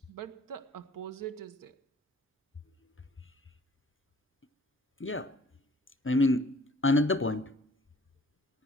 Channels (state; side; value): normal; both; correlation 0.54